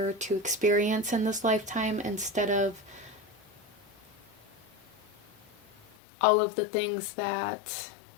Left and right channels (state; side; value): drops out; right; at 5.9 s